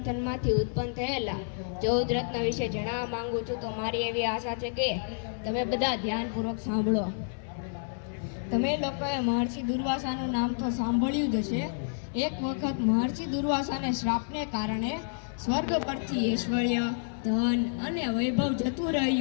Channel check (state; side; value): silent; right; 58 dB below the other